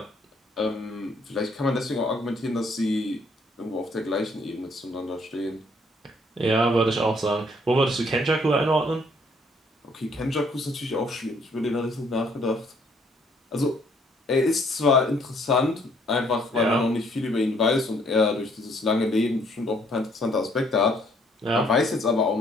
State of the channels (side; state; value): both; normal; correlation 0.65